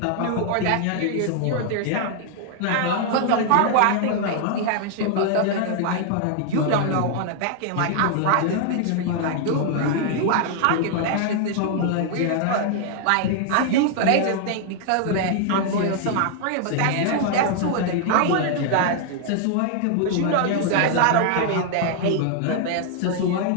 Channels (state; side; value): different; both; correlation 0.00